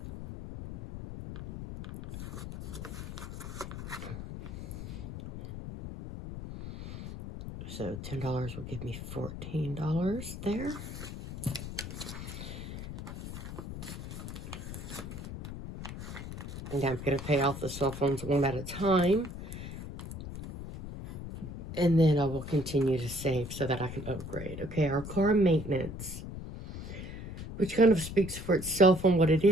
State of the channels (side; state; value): left; noise; rumble, 9 dB below the sound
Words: So $10 will give me $14 there. And I'm going to pay off the cell phones one at a time. And then I will continue to save so that I can upgrade. Okay, our car maintenance, which kind of speaks for itself on what it